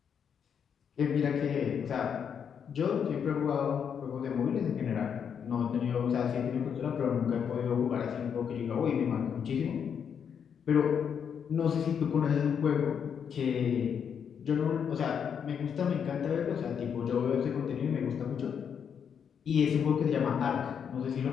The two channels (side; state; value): right; quieter; 7.5 dB